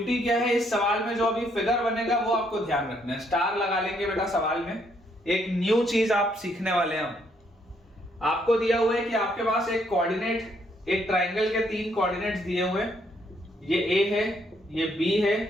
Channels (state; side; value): normal; both; correlation 0.71